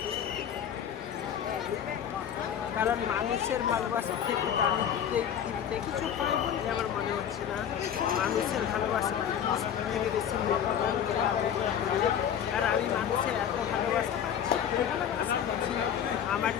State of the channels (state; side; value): quieter; right; 9.0 dB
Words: কারণ মানুষের ভালোবাসার থেকে আমি পৃথিবীতে কিছু পাই বলে আমার মনে হচ্ছে না। মানুষের ভালোবাসা থেকে বেশি আর আমি মানুষের এত ভালোবাসা পাচ্ছি আমার